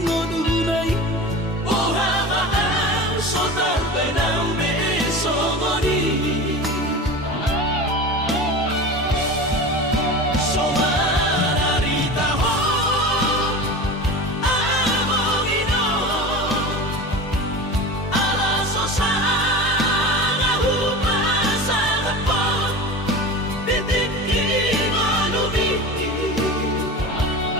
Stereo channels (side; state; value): both; normal; correlation 0.31